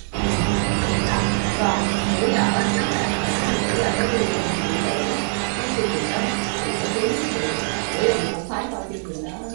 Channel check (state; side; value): silent; left; 64 dB below the other